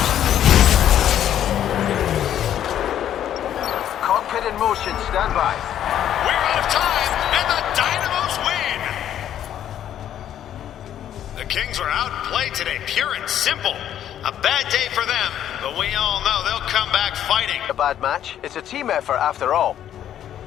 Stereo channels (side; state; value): right; quieter; 10.7 dB